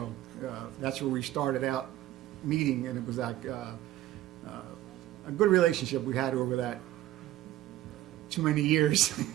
that's where we started out meeting, and it was like a good relationship we had over that too many years.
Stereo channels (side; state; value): left; quieter; 14.7 dB